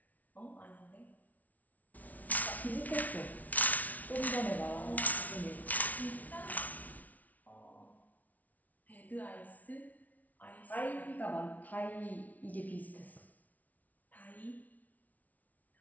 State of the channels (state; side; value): late; right; 0.074 ms